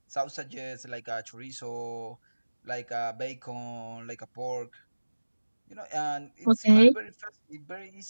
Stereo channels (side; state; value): both; inverted; correlation -1.00